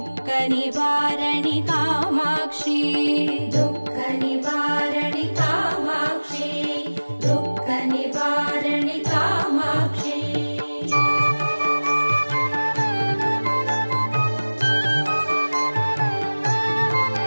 நிவாரணி காமாட்சி துக்க நிவாரணி காமாட்சி துக்க நிவாரணி காமாட்சி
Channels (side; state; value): both; inverted; correlation -1.00